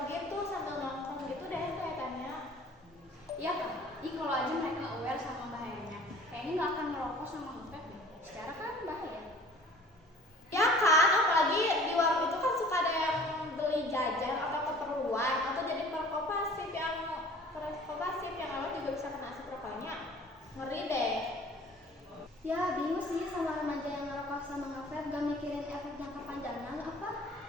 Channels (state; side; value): normal; both; correlation 0.48